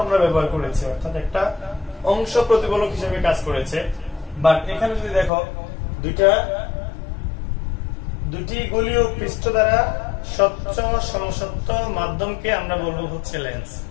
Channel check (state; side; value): drops out; right; at 5.3 s